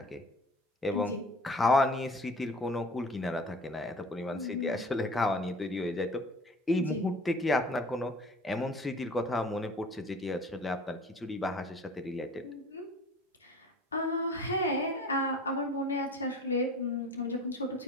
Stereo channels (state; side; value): normal; both; correlation 0.44